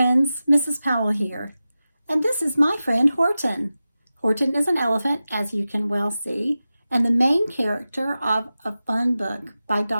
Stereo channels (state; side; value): inverted; both; correlation -0.94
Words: Mrs. Powell here, and this is my friend Horton. Horton is an elephant, as you can well see, and the main character of a fun book by